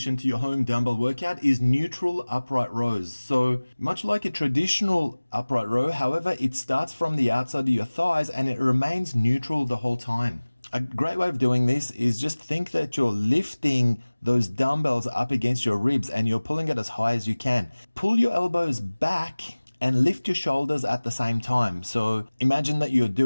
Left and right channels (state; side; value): inverted; both; correlation -1.00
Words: to your home dumbbell workout is neutral upright rows. So much like a traditional upright row, however, it starts from the outside of your thighs and it remains neutral the whole time. A great way of doing this is just think that you're lifting those dumbbells up against your ribs and you're pulling it as high as you can. Pull your elbows back and lift your shoulders at the same time. So imagine that you're